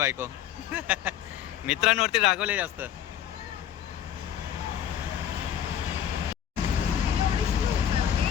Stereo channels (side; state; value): right; quieter; 10.3 dB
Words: मित्रांवरती रागवले जास्त.